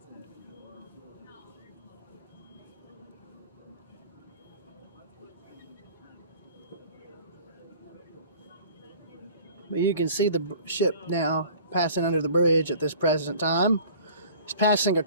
But you can see the ship now passing under the bridge at this present time. It's passing a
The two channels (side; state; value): both; inverted; correlation -0.47